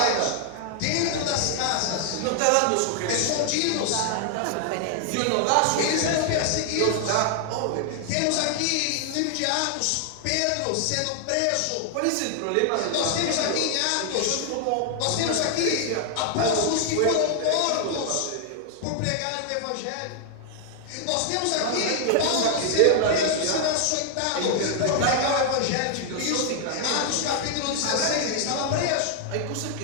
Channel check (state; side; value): different; both; correlation 0.00